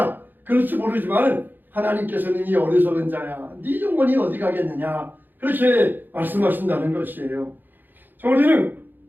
그럴지 모르지만 하나님께서는 이 어리석은 자야 네 영혼이 어디 가겠느냐 그렇게 말씀하신다는 것이에요. 우리는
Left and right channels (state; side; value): late; left; 0.090 ms